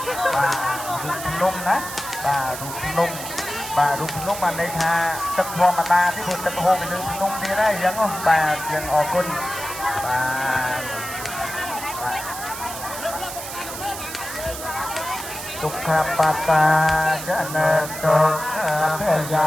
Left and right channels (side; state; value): right; noise; hiss, 9 dB below the sound